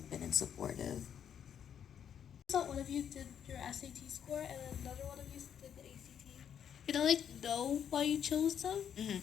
and supportive. So one of you did your SAT score and then another one of you did the ACT. You know, like know why you chose them?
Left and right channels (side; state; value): right; quieter; 8.7 dB